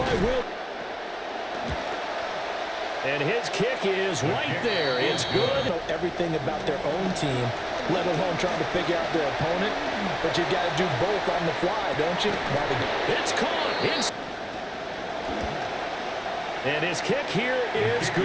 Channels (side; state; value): both; identical; correlation 1.00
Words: Will. And his kick is right there. It's good. Know everything about their own team, let alone trying to figure out their opponent. But you got to do both on the fly, don't you? It's caught. And his kick here is